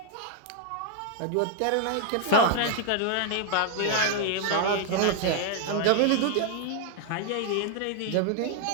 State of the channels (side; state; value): both; different; correlation 0.00